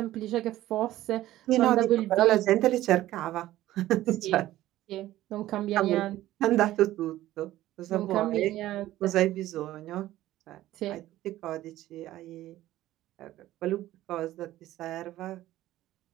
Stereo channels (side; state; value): left; quieter; 14.8 dB